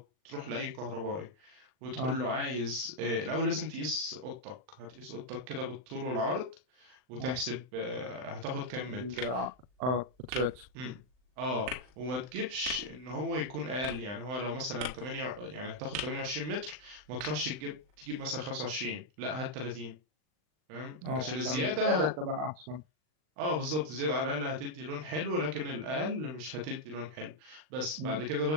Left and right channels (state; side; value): late; left; 39 ms